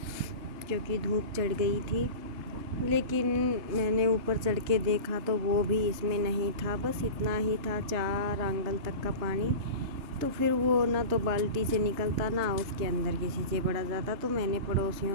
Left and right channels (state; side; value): late; left; 3.3 ms